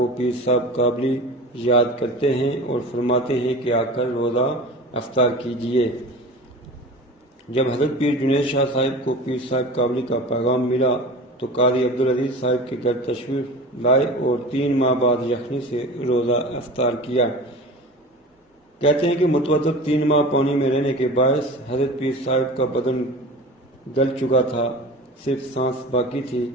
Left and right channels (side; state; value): both; normal; correlation 0.35